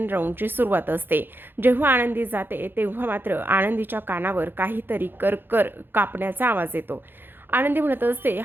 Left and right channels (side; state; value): left; late; 0.10 ms